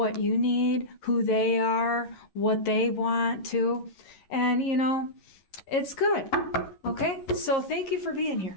you need, who they are, what they want to, and you know, it's good. Okay, so thank you for being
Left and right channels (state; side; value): late; right; 11 ms